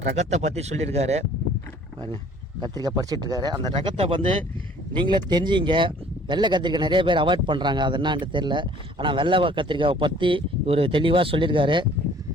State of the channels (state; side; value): normal; both; correlation 0.54